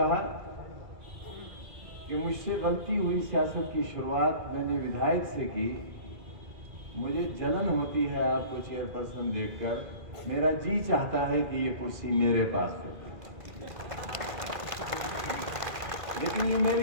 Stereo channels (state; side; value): late; left; 1.5 ms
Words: कि मुझसे गलती हुई, सियासत की शुरुआत मैंने विधायक से की। मुझे जलन होती है आपको चेयरपर्सन देखकर। मेरा जी चाहता है कि ये कुर्सी मेरे पास होती, लेकिन ये